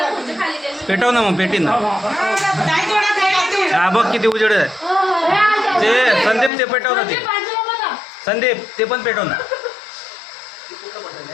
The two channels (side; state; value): right; drops out; at 6.5 s